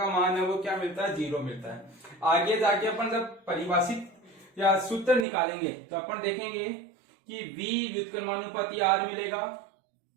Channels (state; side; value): drops out; left; at 5.2 s